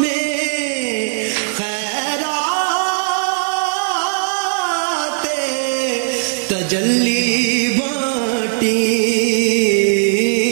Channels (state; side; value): silent; left; 56 dB below the other